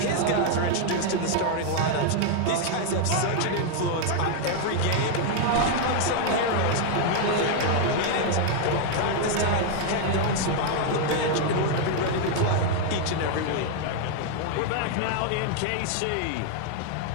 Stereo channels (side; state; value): both; different; correlation 0.00